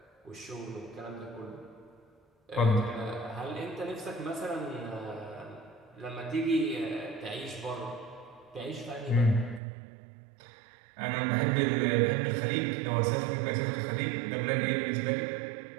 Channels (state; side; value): drops out; left; at 9.6 s